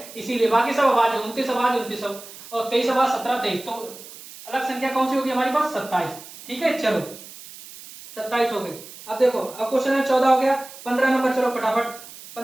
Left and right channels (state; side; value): noise; right; hiss, 16 dB below the sound